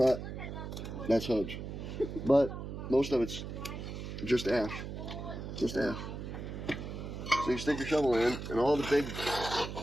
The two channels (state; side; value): noise; right; hum, 7 dB below the sound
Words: that's hudge. But most of it's just ash. Just ash. So you stick your shovel in, and all the big